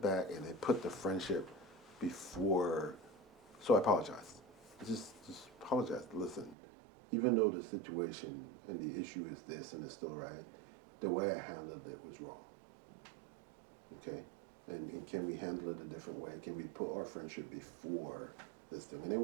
back and they put the friendship before. So I apologize. Just apologize. Listen, even though the situation and the issue is this and it's still right, the way I handled it was wrong. Okay? And can we handle it a different way? Can we put our friendship before this thing? And it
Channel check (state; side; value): drops out; left; at 6.6 s